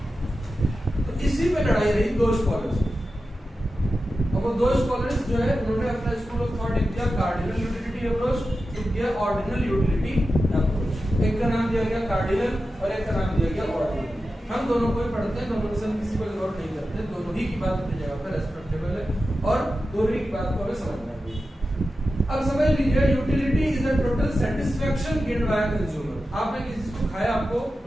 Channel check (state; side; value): normal; both; correlation 0.92